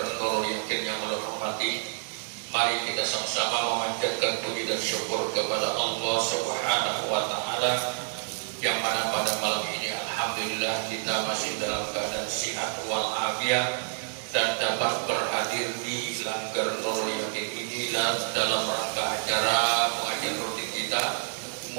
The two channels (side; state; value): left; silent; digital silence